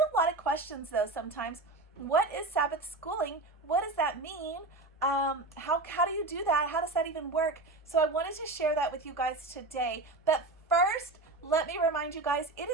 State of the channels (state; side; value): quieter; left; 3.0 dB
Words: lot of questions though sometimes. What is Sabbath schooling? What does that mean? How do you do that? How does that even work? So I wanted to share that with you guys today. But first, let me remind you guys, it